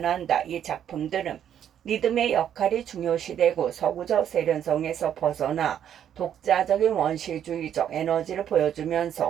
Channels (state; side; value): quieter; left; 9.6 dB